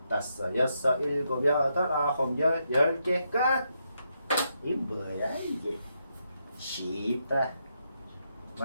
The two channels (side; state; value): both; inverted; correlation -0.81